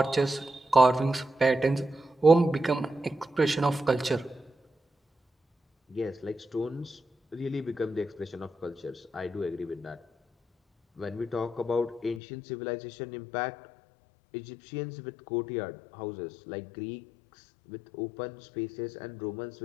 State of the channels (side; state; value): right; drops out; at 12.2 s